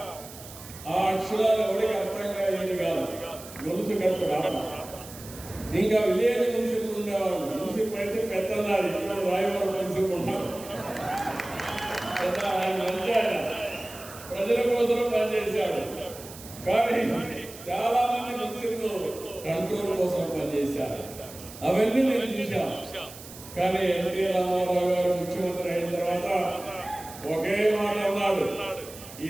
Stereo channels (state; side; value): noise; right; hiss, 16 dB below the sound